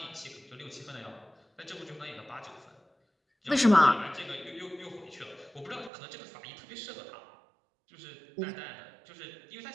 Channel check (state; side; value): drops out; left; at 5.9 s